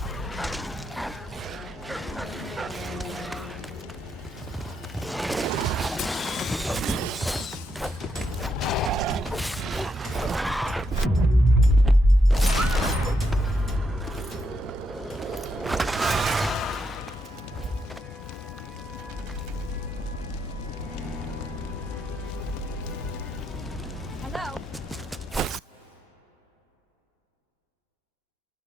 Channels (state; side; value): normal; both; correlation 0.80